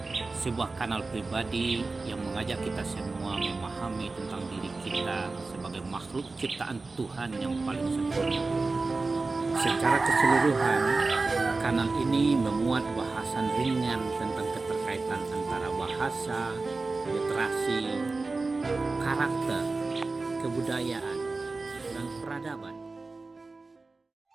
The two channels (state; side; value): quieter; left; 3.7 dB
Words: sebuah kanal pribadi yang mengajak kita semua memahami tentang diri kita sebagai makhluk ciptaan Tuhan yang paling sempurna. Secara keseluruhan, kanal ini memuat bahasan ringan tentang keterkaitan antara bahasa, literasi, karakter, kebudayaan, dan peradaban.